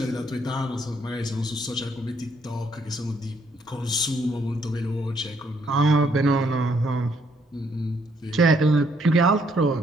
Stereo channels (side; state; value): both; normal; correlation 0.70